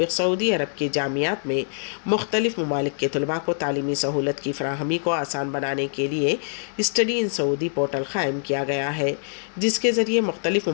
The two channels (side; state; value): right; silent; digital silence